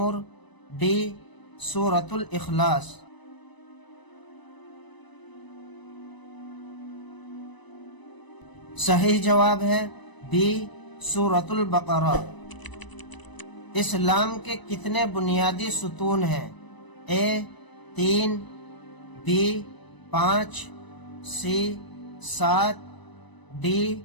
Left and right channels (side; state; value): right; late; 1.0 ms